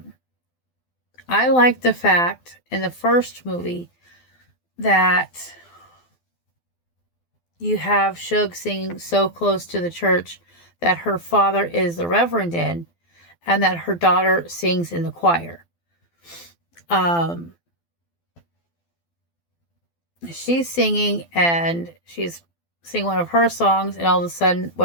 like the fact in the first movie that you have Shug singing so close to the church that her father is the reverend in, and that her daughter sings in the choir. She's singing, and she's singing one of her songs, and all of a sudden,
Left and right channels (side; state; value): right; late; 12 ms